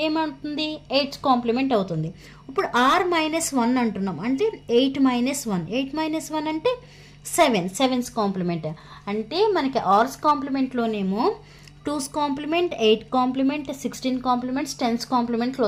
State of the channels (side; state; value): both; identical; correlation 1.00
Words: ఏమవుతుంది, 8's కాంప్లిమెంట్ అవుతుంది. ఇప్పుడు R-1 అంటున్నాం అంటే 8 - 1. 8 - 1 అంటే 7's కాంప్లిమెంట్. అంటే మనకి ఆర్స్ కాంప్లిమెంట్లోనేమో 2's complement, 8 complement, 16 complements, 10's కాంప్లిమెంట్లు